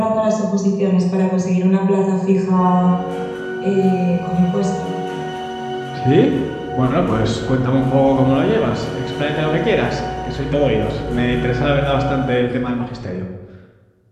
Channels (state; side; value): identical; both; correlation 1.00